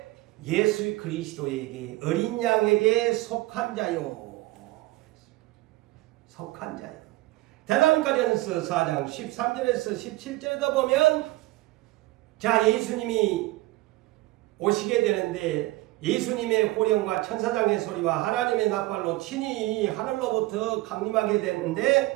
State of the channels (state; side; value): quieter; left; 19.4 dB